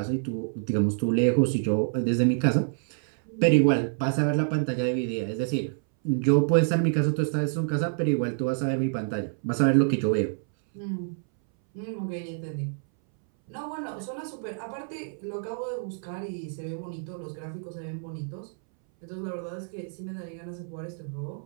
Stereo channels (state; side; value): silent; left; 60 dB below the other